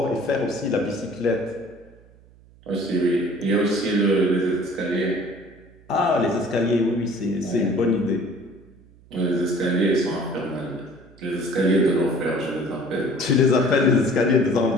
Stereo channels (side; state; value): right; noise; hum, 26 dB below the sound